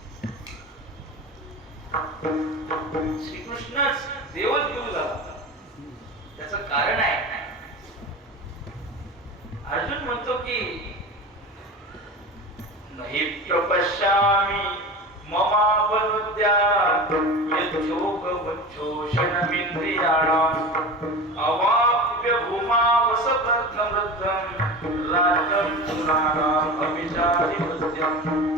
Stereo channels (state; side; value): normal; both; correlation 0.31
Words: श्रीकृष्णच देवच गुरु झाला. त्याचं कारण आहे, अर्जुन म्हणतो की नहि प्रपश्यामि ममापनुद्यात् यच्छोकवच्छोषणमिन्द्रियाणाम् अवाप्य भूमावसपत्नमृद्धं राज्यं सुराणाम् अभिचारिपत्यम्.